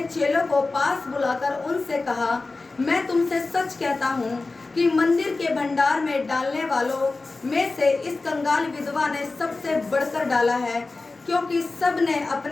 चेलों को पास बुलाकर उनसे कहा, मैं तुमसे सच कहता हूँ कि मंदिर के भंडार में डालने वालों में से इस कंगाल विधवा ने सबसे बढ़कर डाला है, क्योंकि सब ने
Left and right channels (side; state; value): right; quieter; 3.6 dB